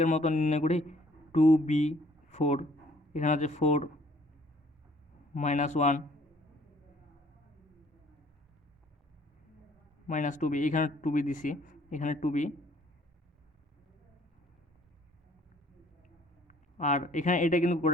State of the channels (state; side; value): normal; both; correlation 0.59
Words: মতো নির্ণয় করি 2b4, এখানে হচ্ছে 4 -1 -2b, এখানে 2b দিছি, এখানে 2b, আর এখানে এটা কিন্তু